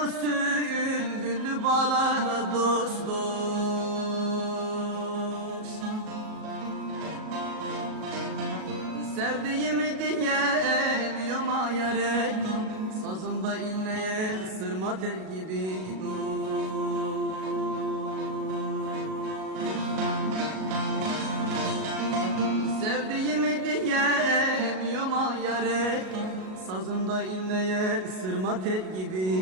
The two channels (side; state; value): left; late; 38 ms